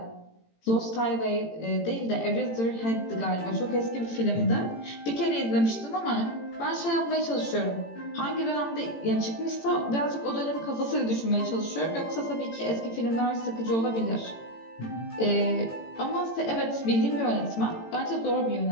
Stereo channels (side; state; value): right; late; 18 ms